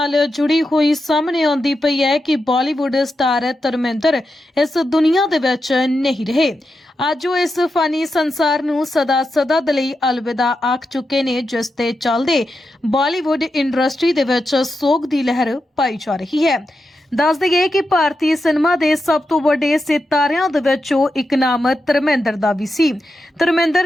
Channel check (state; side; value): normal; both; correlation 0.88